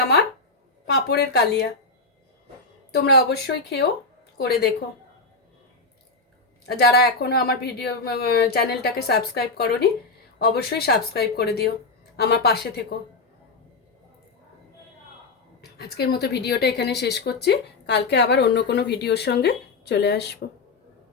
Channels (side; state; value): right; quieter; 3.7 dB